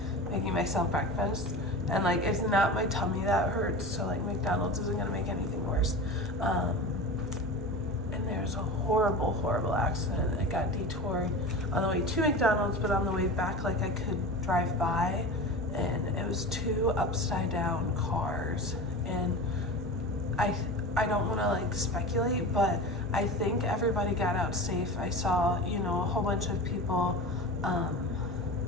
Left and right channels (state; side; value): normal; both; correlation 0.30